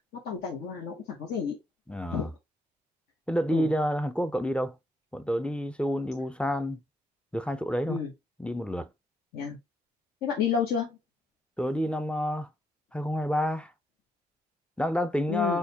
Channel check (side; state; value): both; normal; correlation 0.76